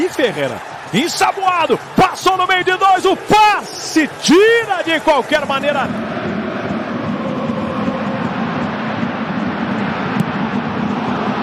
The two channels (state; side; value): identical; both; correlation 1.00